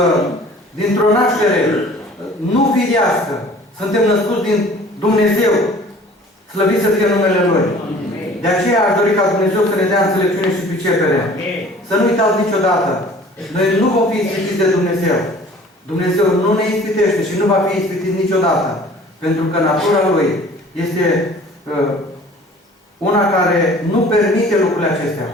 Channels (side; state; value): both; normal; correlation 0.49